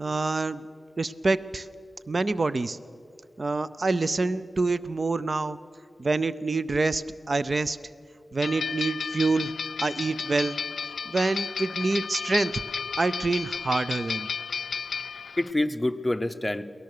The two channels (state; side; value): normal; both; correlation 0.93